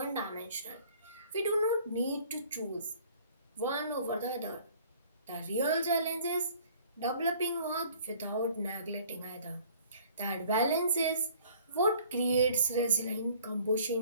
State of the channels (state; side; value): inverted; both; correlation -0.54